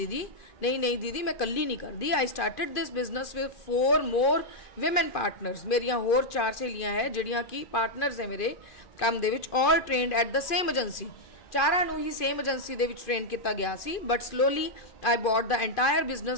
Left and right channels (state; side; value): late; right; 2.4 ms